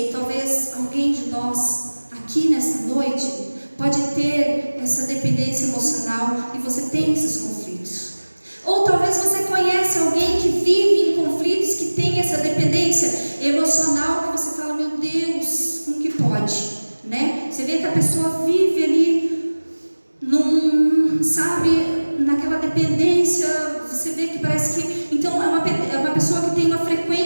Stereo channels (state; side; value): inverted; both; correlation -1.00